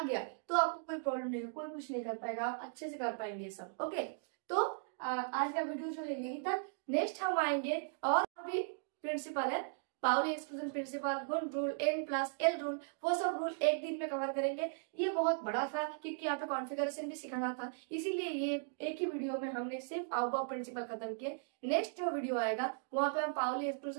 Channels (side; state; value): left; silent; digital silence